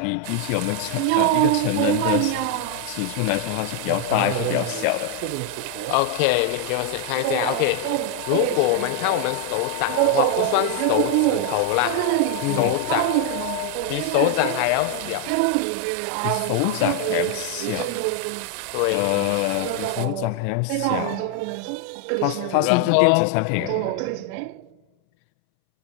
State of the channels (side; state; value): both; different; correlation 0.00